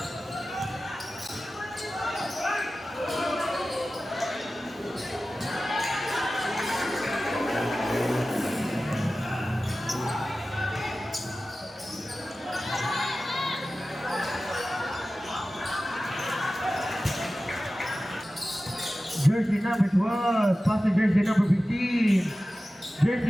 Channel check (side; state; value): both; normal; correlation 0.95